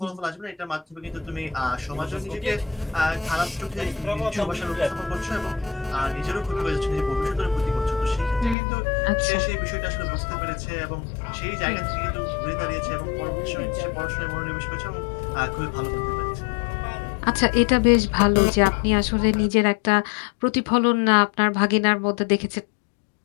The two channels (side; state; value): right; drops out; at 8.6 s